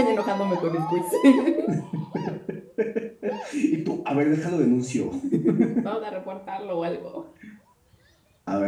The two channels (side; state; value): both; identical; correlation 1.00